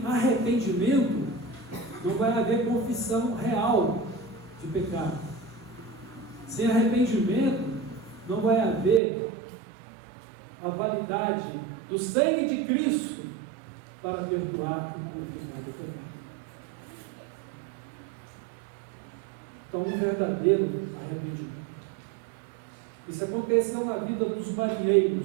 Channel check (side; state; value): left; drops out; at 9.0 s